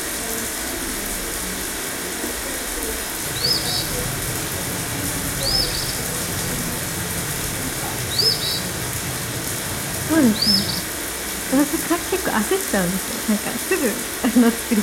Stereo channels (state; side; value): identical; both; correlation 1.00